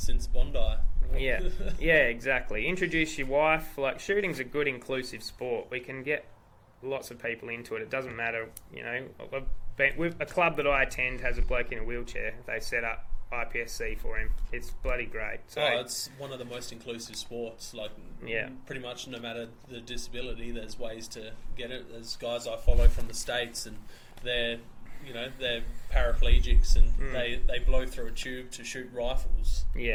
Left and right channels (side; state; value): both; identical; correlation 1.00